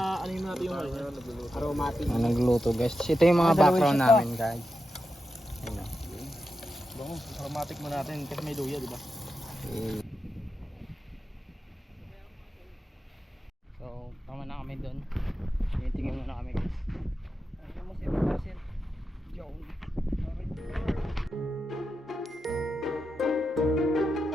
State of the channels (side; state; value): both; normal; correlation 0.89